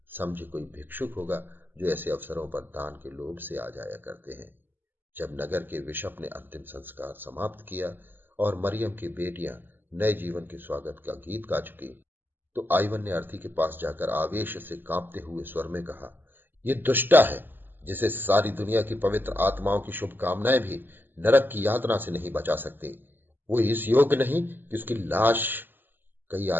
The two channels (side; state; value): left; late; 0.094 ms